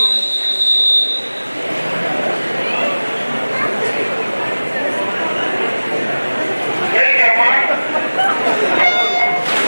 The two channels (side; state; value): both; inverted; correlation -1.00